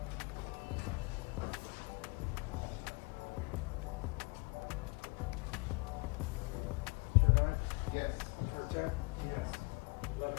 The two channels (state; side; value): quieter; right; 29.7 dB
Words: Juror 9? Yes. Juror 10? Yes. 11